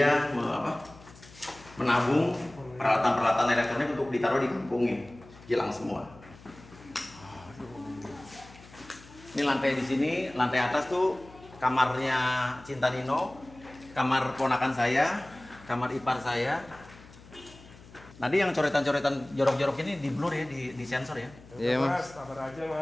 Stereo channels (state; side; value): noise; left; hum, 21 dB below the sound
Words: menabung peralatan-peralatan elektronik untuk ditaruh di kampungnya. Hilang semua. Ini lantai di sini, lantai atas tuh kamarnya Cinta Nino, kamar ponakan saya, kamar ipar saya. Tadi yang coretan-coretan jorok-jorok ini di blur ya, di sensor ya. Iya Mas, sabar aja